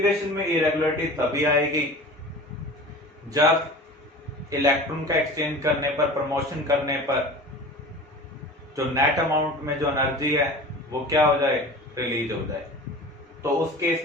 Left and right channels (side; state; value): both; normal; correlation 0.37